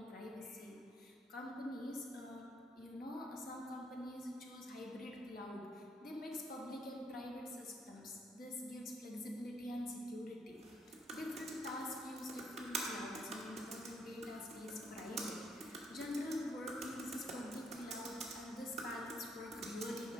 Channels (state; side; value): normal; both; correlation 0.70